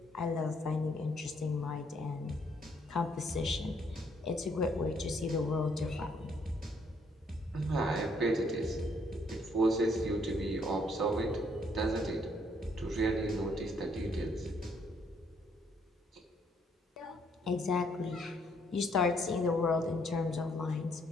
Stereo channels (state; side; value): normal; both; correlation 0.69